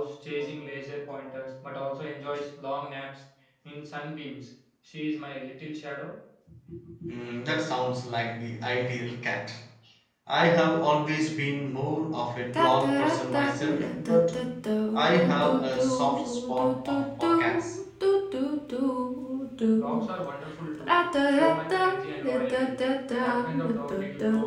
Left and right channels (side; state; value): both; identical; correlation 1.00